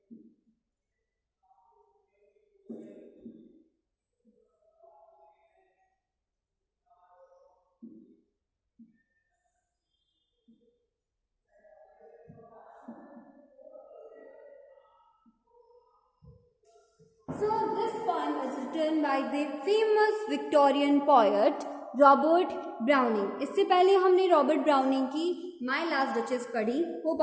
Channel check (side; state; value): both; identical; correlation 1.00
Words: this poem is written by the famous Victorian poet Robert browning. इससे पहले हमने Robert browning की my last duchess पढ़ी. Hope